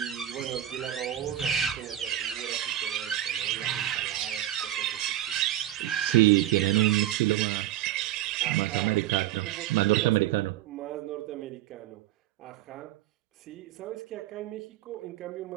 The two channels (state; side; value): quieter; left; 13.2 dB